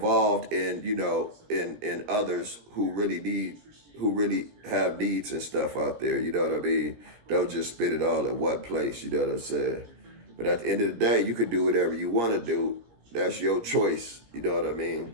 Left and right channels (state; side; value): late; left; 17 ms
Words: in, in others who really have needs and stuff out there. You know what I mean? Don't just spit it all in one place. You know what I'm saying? But at the end of the day, you can do whatever you want to do. That's your choice. You know what I